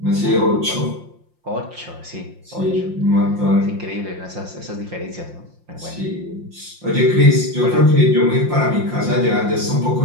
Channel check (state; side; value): late; left; 5.7 ms